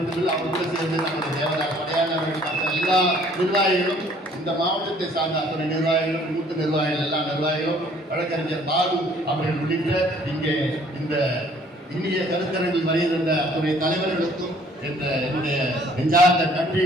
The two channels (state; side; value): normal; both; correlation 0.58